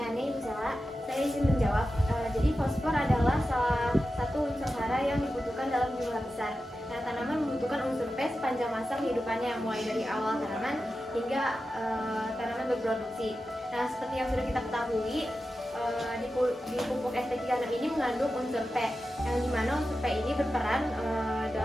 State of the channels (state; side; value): normal; both; correlation 0.92